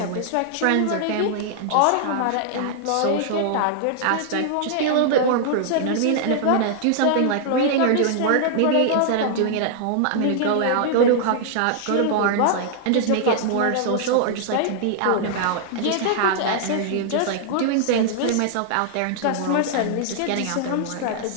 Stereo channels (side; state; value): both; different; correlation -0.01